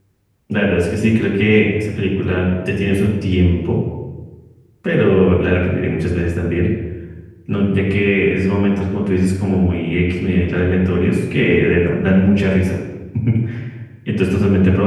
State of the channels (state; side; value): identical; both; correlation 1.00